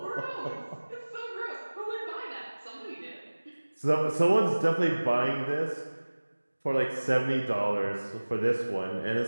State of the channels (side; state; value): both; inverted; correlation -1.00